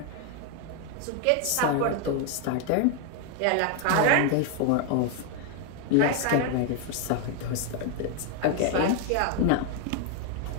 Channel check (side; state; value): both; different; correlation 0.01